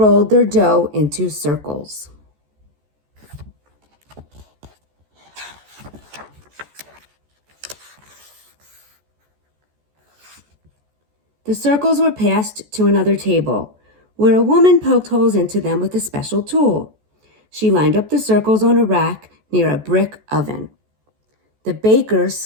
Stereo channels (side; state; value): left; late; 14 ms